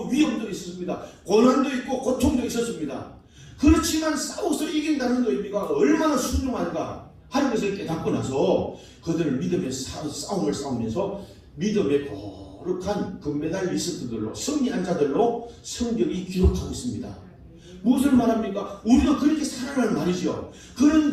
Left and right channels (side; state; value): both; identical; correlation 1.00